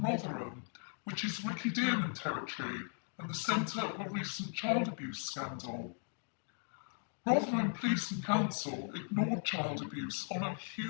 Rotherham, which is Ricky Dearman territory and the centre of a recent child abuse scandal. Rotherham Police and Council ignored child abuse on a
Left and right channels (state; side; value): silent; right; 53 dB below the other